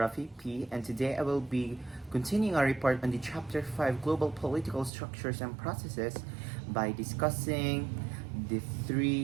P, and today I will be continuing our report on the Chapter 5 Global Political Structures and Processes by discussing the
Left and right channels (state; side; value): drops out; left; at 4.9 s